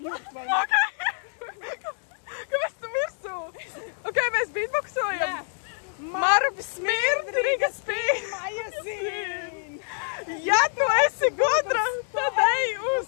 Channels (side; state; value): right; silent; 61 dB below the other